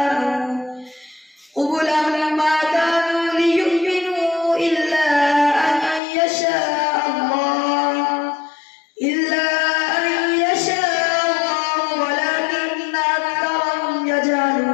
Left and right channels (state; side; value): drops out; right; at 6.0 s